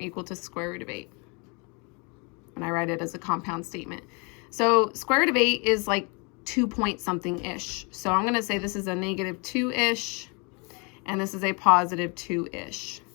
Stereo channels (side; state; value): right; quieter; 32.0 dB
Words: to square root of 8. And I write it as a compound statement. So square root of 8 is like 2 point something-ish. So I'm going to say this is a negative 2-ish, and this is a positive 2-ish.